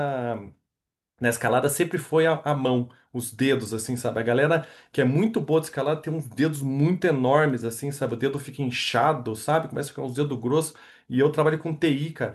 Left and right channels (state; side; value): identical; both; correlation 1.00